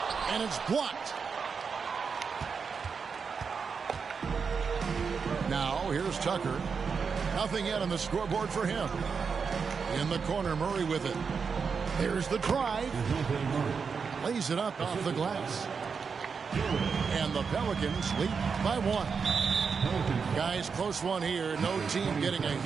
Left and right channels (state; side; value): quieter; left; 5.7 dB